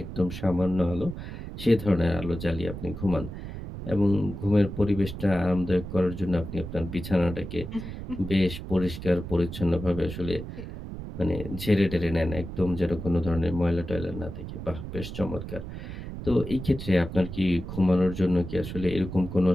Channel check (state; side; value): noise; right; rumble, 9 dB below the sound